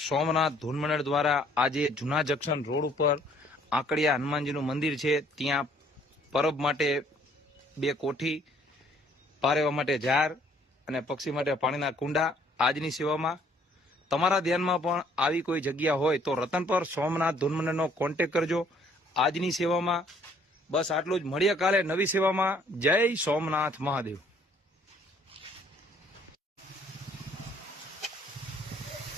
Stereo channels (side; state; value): both; normal; correlation 0.61